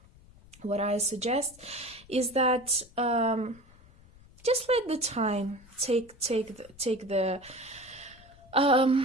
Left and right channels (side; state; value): left; noise; rumble, 25 dB below the sound